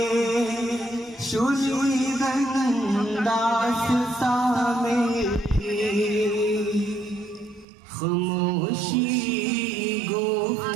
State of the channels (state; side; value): drops out; left; at 7.7 s